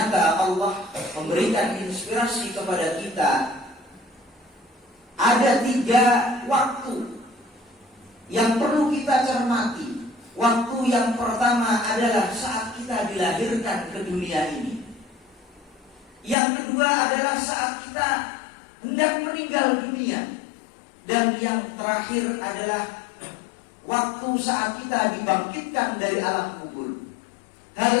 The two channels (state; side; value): drops out; right; at 16.4 s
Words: Allah memberikan inspirasi kepada kita. Ada 3 waktu yang perlu kita cermati. Waktu yang pertama adalah saat kita dilahirkan ke dunia ini. Yang kedua adalah saat kita hendak meninggal dunia. Dan yang terakhir adalah waktu saat kita dibangkitkan dari alam kubur.